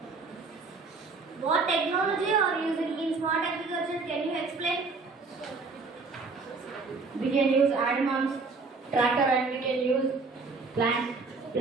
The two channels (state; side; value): quieter; left; 4.1 dB